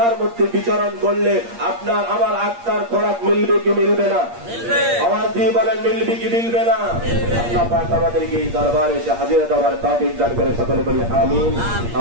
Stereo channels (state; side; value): late; left; 8.6 ms